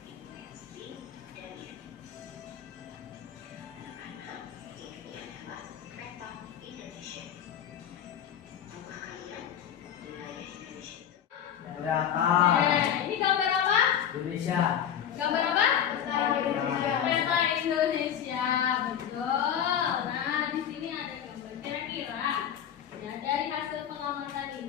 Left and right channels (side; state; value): right; quieter; 9.3 dB